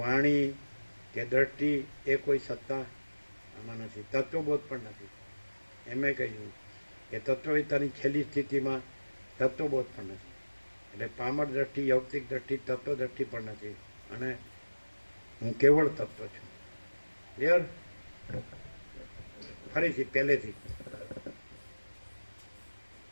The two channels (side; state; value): both; inverted; correlation -1.00